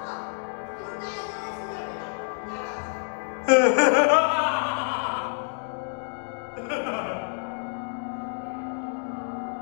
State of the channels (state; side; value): silent; right; 60 dB below the other